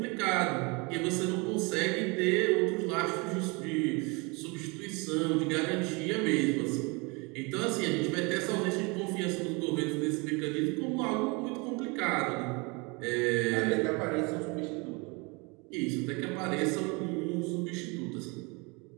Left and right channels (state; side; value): quieter; left; 28.8 dB